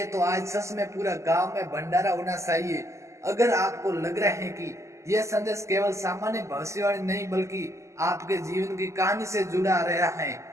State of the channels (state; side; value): late; left; 0.14 ms